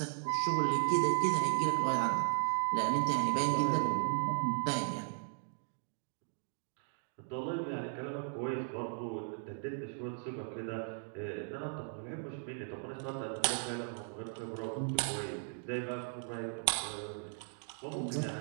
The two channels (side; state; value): left; silent; 53 dB below the other